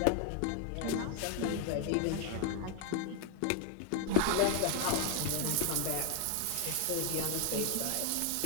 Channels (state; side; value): different; both; correlation 0.01